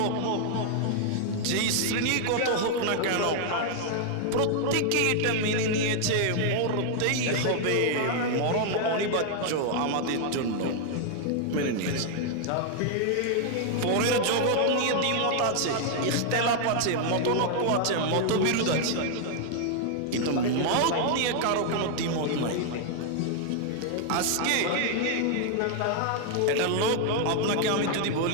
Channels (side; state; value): both; different; correlation 0.00